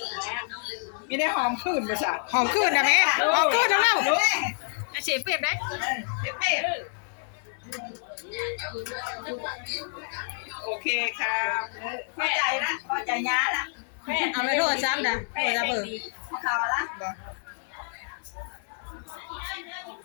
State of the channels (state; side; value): silent; right; 59 dB below the other